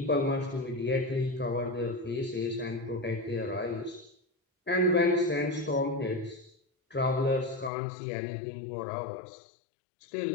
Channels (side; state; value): right; drops out; at 7.7 s